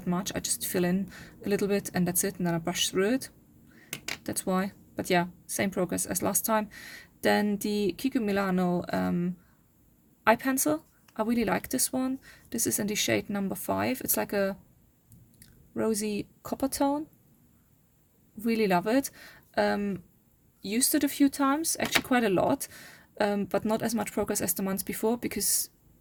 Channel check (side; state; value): both; identical; correlation 1.00